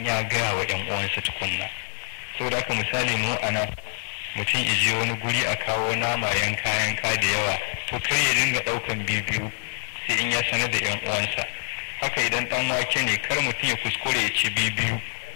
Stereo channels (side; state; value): right; silent; 61 dB below the other